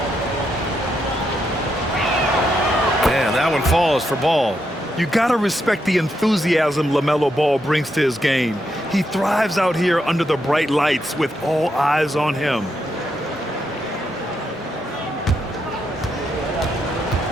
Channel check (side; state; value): both; normal; correlation 0.81